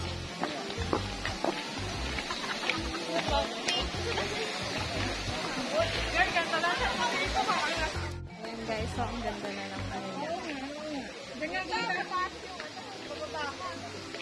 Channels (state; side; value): identical; both; correlation 1.00